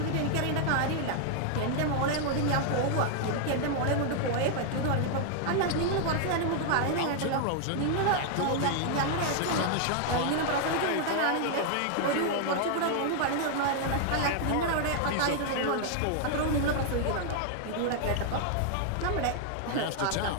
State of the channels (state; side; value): different; both; correlation 0.00